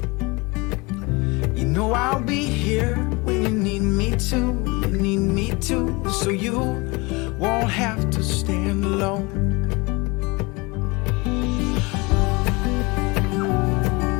You know I'll be here when you need me to, so you won't have to stand alone.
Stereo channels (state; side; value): quieter; right; 25.9 dB